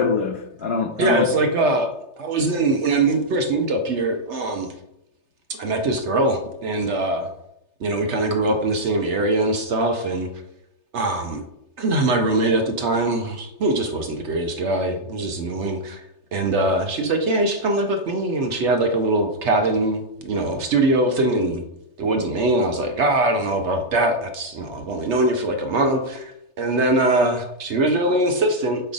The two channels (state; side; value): late; left; 3.3 ms